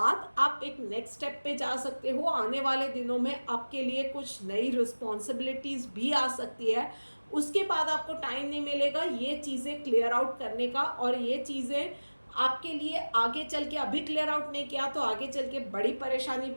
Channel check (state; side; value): inverted; both; correlation -1.00